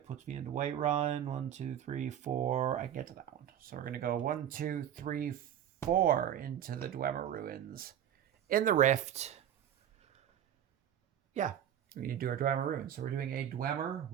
Puts me into Whiterun. 1, 2, 3, 4. I can get to that one. So we're going to go 1, 2, 3, 4 into the Dwemer ruins. In the Rift. Yeah. We need to do our Dwemer ruins. So we're doing a Dwemer,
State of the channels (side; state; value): left; quieter; 10.1 dB